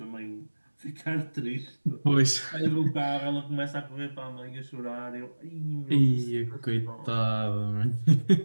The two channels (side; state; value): both; inverted; correlation -1.00